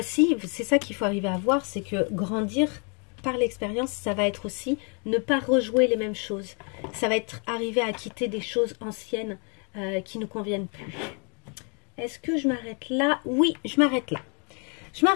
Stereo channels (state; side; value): quieter; right; 37.0 dB